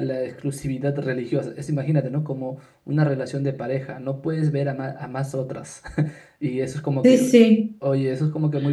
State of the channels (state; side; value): identical; both; correlation 1.00